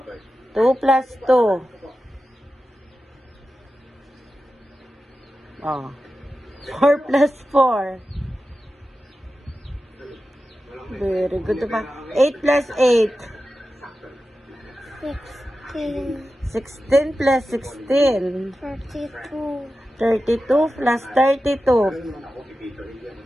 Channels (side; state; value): both; normal; correlation 0.93